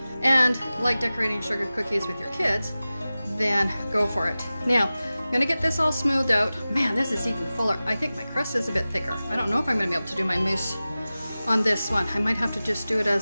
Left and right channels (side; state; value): both; inverted; correlation -0.96